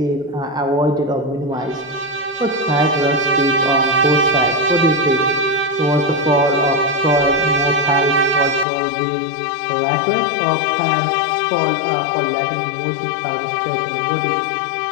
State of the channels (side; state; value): right; drops out; at 8.7 s